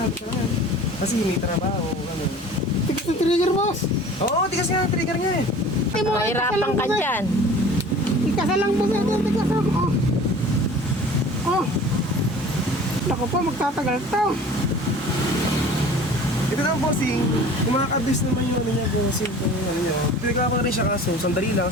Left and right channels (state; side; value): normal; both; correlation 0.44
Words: ka naman. Kasi may trabaho, ano. Tigas yung trigger, boss. Oo, tigas nga ang trigger niya eh. Mahirapan ka dyan. Ikasa lang, boss. Ito, tigas lang. Oh. Nako po, magtatagal to. Ito naman bossing, kumakabis naman yung ano niya, bossing. Kung ano niya. Pinagawa ko na rin siya kaso, sandali lang,